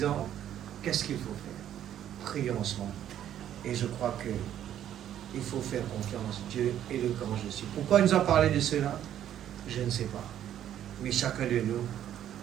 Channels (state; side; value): quieter; left; 10.9 dB